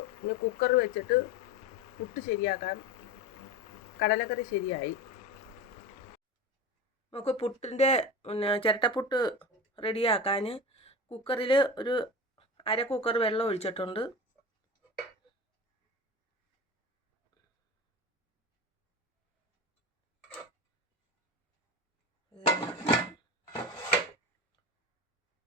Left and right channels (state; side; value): normal; both; correlation 0.28